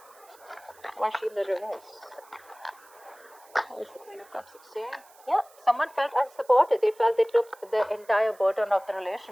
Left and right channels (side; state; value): right; noise; hiss, 27 dB below the sound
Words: Why is she in the reverse? Why is the Queen of Cups here? Yeah, someone felt unsupported. They felt they took the entire burden of the